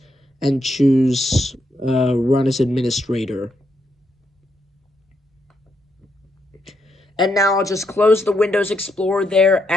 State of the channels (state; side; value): normal; both; correlation 0.79